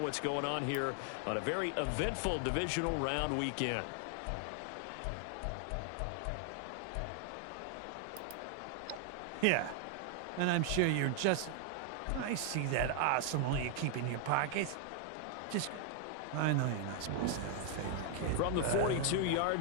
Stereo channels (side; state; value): both; different; correlation 0.00